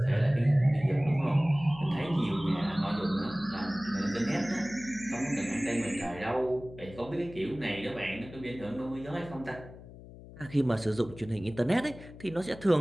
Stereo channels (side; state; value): left; noise; hum, 17 dB below the sound